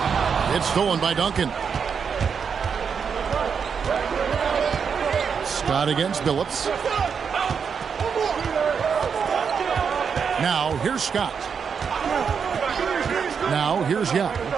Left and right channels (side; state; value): left; quieter; 6.5 dB